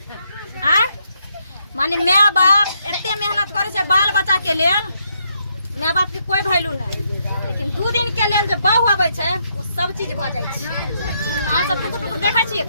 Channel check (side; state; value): both; inverted; correlation -0.76